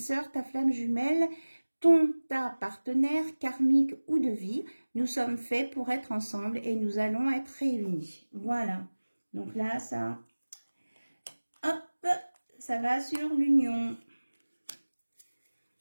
ta flamme jumelle, ta partenaire karmique ou de vie. Nous sommes faits pour être ensemble et nous allons être réunis. Voilà. Donc là, ça, hop, ça va sur l'union.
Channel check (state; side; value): inverted; both; correlation -1.00